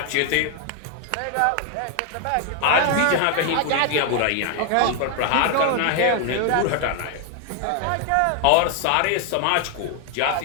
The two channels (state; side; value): different; both; correlation 0.01